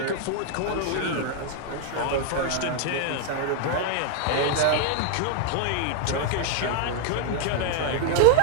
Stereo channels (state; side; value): different; both; correlation 0.00